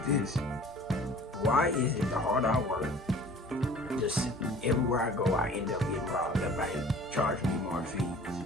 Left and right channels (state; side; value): normal; both; correlation 0.47